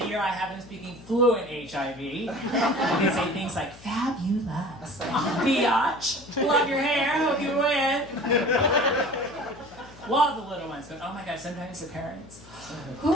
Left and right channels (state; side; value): noise; left; hum, 21 dB below the sound